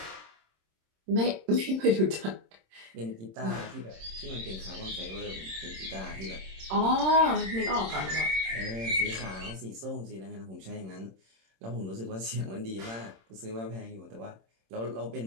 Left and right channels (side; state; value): left; late; 26 ms